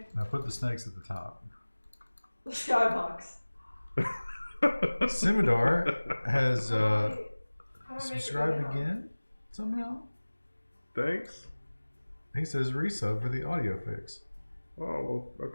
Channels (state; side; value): inverted; both; correlation -1.00